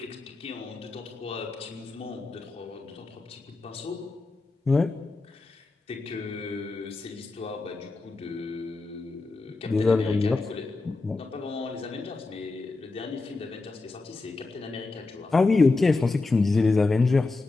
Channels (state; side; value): quieter; right; 3.6 dB